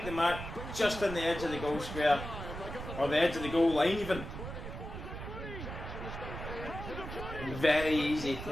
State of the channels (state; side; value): noise; right; rumble, 8 dB below the sound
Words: the mark just on the edge of the goal square. Or the edge of the goal line even. Very easy